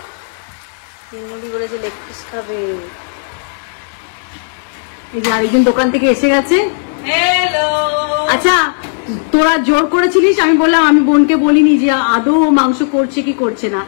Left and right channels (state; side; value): silent; right; digital silence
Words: তিনমুড়ি বলেছে লেগ পিস খাবে। এই যে আরেকজন দোকান থেকে এসে গেছে। হ্যালো। আচ্ছা, তোরা জোর করেছিলিস, আমি বললাম, আমি বোনকে বলিনি যে আদৌ মাংস করছে কি করছে না,